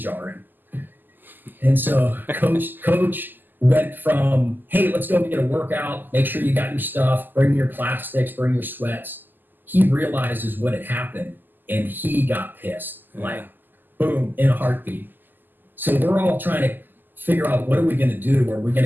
And so coach went from, hey, let's go get a workout, make sure you got your stuff, bring your plastics, bring your sweats. He realizes what had happened, and he got pissed, like, boom, in a heartbeat. So we're all trying to figure out, what are we going to do? Are we going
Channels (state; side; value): late; left; 0.089 ms